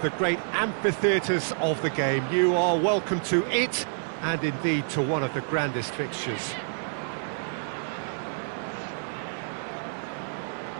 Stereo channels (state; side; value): silent; left; 58 dB below the other